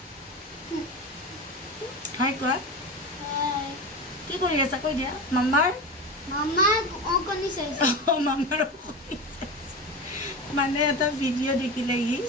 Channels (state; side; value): normal; both; correlation 0.24